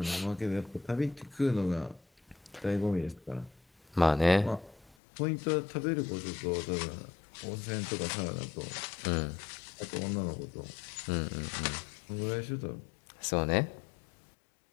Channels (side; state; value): right; drops out; at 5.0 s